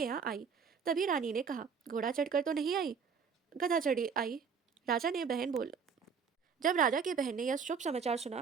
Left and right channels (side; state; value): left; quieter; 6.2 dB